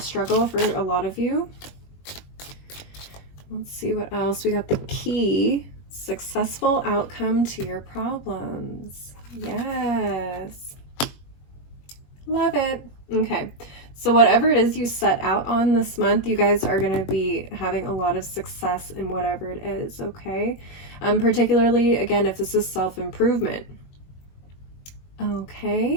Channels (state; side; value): late; right; 21 ms